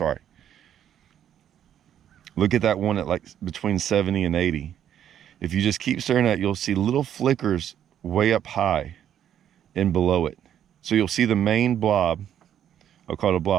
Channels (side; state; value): left; quieter; 10.1 dB